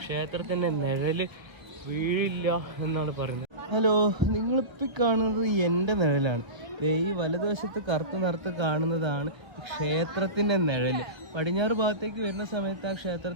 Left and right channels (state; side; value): late; left; 1.4 ms